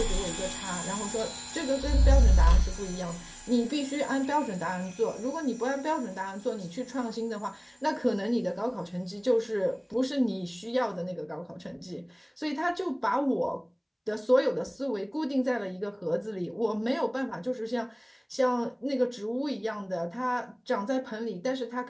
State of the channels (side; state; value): both; identical; correlation 1.00